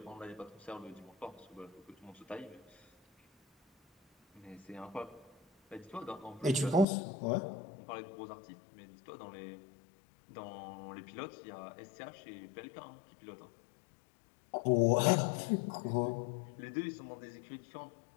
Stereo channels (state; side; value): drops out; right; at 6.9 s